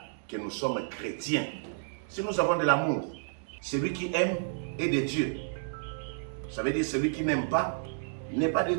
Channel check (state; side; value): silent; left; digital silence